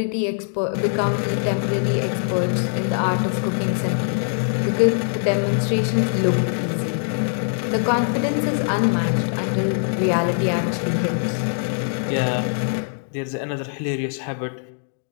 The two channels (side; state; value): right; silent; digital silence